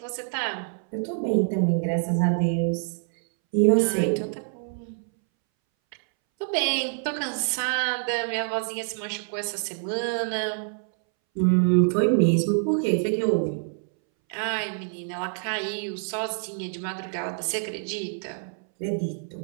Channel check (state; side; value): silent; left; 61 dB below the other